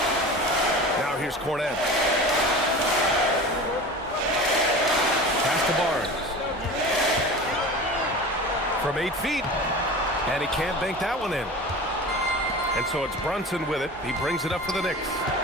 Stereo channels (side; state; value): both; normal; correlation 0.34